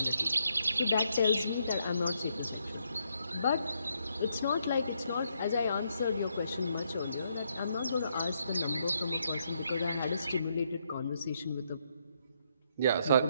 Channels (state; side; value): inverted; both; correlation -0.76